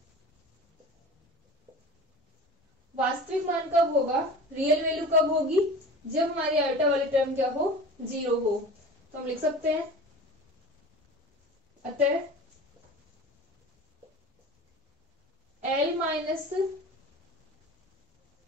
वास्तविक मान कब होगा, रियल वैल्यू कब होगी, जब हमारी आयोटा वाली टर्म क्या हो, जीरो हो। तो हम लिख सकते हैं अतः L माइनस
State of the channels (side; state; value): both; normal; correlation 0.36